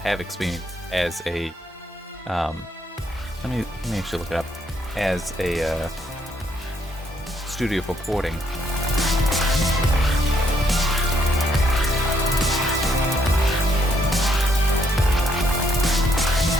experience as a let me actually look it up, as a studio for porting.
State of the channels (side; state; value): both; normal; correlation 0.72